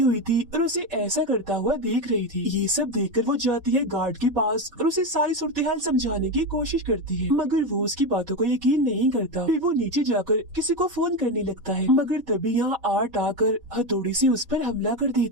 हुई थी और उसे ऐसा करता हुआ देख रही थी। ये सब देखकर वो जाती है गार्ड के पास और उसे सारी सूरत-ए-हाल समझाने की कोशिश करती है, मगर वो उसकी बातों को यकीन नहीं करता। फिर वो नीचे जाकर किसी को फोन करने लगता है, मगर तभी यहाँ आर्ट आकर हथौड़ी से उस पर हमला कर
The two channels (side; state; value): left; late; 4.1 ms